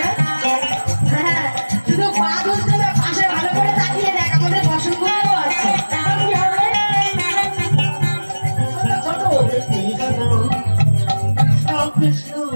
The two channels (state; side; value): inverted; both; correlation -1.00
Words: হ্যাঁ, শুধু পা দুলছে না, পাশে ভালো করে তাকিয়ে দেখ, আমাদের বসনগুলো আছে। এখন কি হবে? ছোট